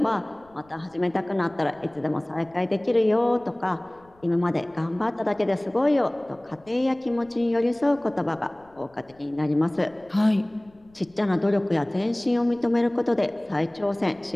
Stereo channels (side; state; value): left; noise; rumble, 30 dB below the sound